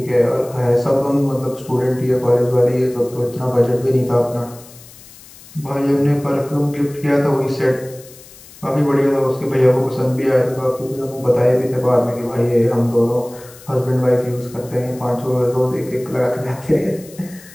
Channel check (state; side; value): noise; left; hiss, 21 dB below the sound